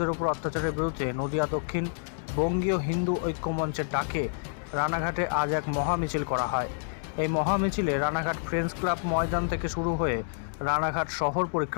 ওপর অত্যাচারের বিরুদ্ধে নদিয়া দক্ষিণ বঙ্গীয় হিন্দু ঐক্যমঞ্চের ডাকে রানাঘাটে আজ এক মহামিছিল করা হয়। এই মহামিছিলে রানাঘাট ফ্রেন্ডস ক্লাব ময়দান থেকে শুরু হয়ে রানাঘাট শহর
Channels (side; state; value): right; silent; digital silence